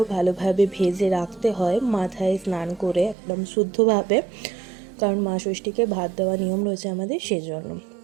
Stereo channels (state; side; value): drops out; left; at 3.2 s